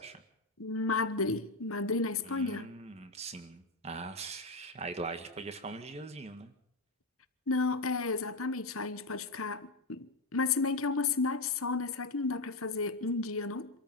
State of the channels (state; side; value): quieter; right; 3.1 dB